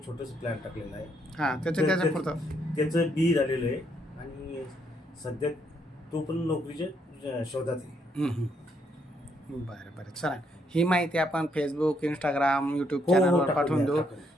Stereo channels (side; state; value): both; normal; correlation 0.73